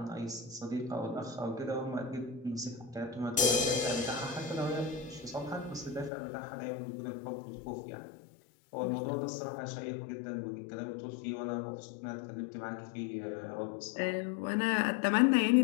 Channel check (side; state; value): right; drops out; at 6.1 s